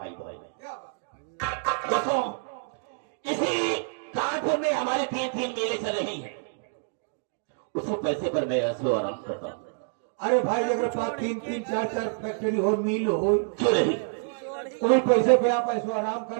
भाई है। दोस्तों, इसी कानपुर में हमारे 3 मेले चल रही हैं। उसी पैसे पर मैं ऐसे आराम करता हूँ। अरे भाई अगर पास 3 4 फैक्ट्री हो, मिल हो, क्यों नहीं? कोई पैसे पे आप ऐसे आराम कर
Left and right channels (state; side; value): silent; left; digital silence